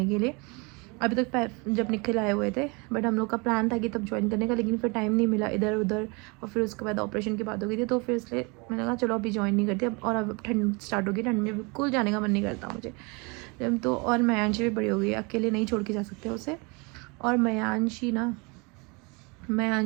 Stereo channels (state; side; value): quieter; left; 29.4 dB